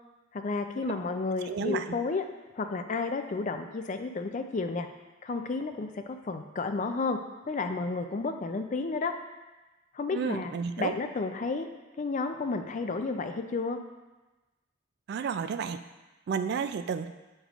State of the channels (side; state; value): both; normal; correlation 0.23